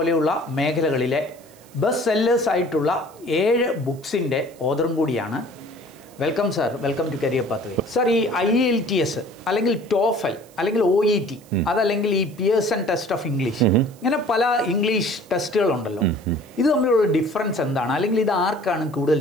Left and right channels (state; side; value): noise; right; hiss, 26 dB below the sound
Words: മേഖലകളിലെ ബെസ്റ്റ് സെല്ലേഴ്സ് ആയിട്ടുള്ള 7 ബുക്സിൻ്റെ ഓതറും കൂടിയാണ്. Welcome sir, welcome to career pathway. Sir, ഈ IELTS അല്ലെങ്കിൽ TOEFL അല്ലെങ്കിൽ OET അതല്ലെങ്കിൽ ഈ പിയേഴ്സൺ ടെസ്റ്റ് ഓഫ് ഇംഗ്ലീഷ് ഇങ്ങനെ പല ഇംഗ്ലീഷ് ടെസ്റ്റുകളുണ്ടല്ലോ, ഇത് തമ്മിലുള്ള ഡിഫറൻസ് എന്താണ്, അല്ലെങ്കിൽ ഇത് ആർക്കാണ് കൂടുതൽ